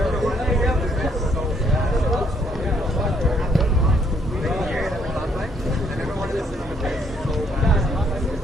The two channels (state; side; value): normal; both; correlation 0.69